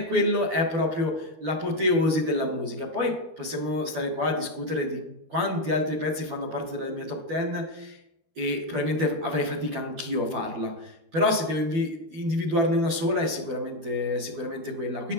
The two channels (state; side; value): late; left; 13 ms